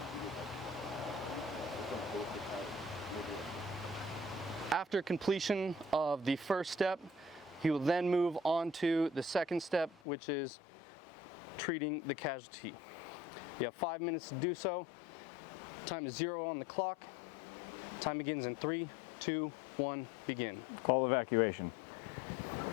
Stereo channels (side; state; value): right; drops out; at 10.0 s